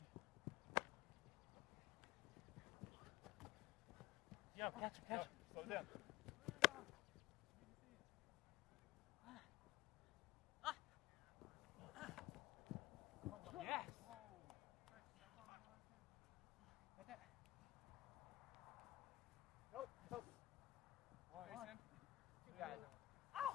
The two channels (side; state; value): right; quieter; 17.4 dB